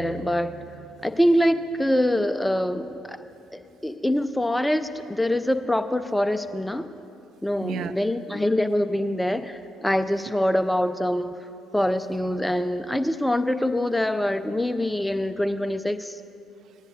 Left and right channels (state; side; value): normal; both; correlation 0.95